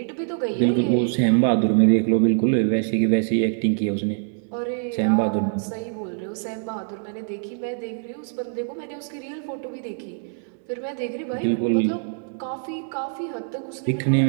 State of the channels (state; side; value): silent; left; digital silence